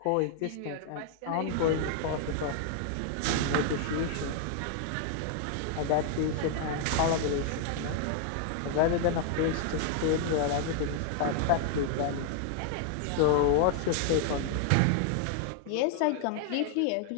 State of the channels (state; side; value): different; both; correlation 0.00